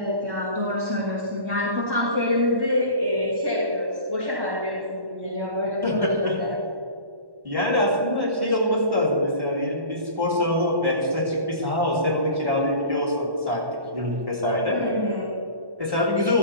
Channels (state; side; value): late; left; 1.1 ms